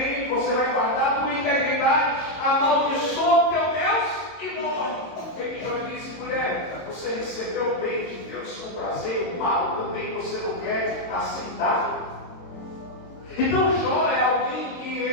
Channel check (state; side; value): late; right; 22 ms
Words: você vai guardar a tua integridade, amaldiçoa o teu Deus e morre. Ele Jó disse: mulher, você recebeu o bem de Deus com prazer, o mal também você não quer aceitar. Então Jó é alguém que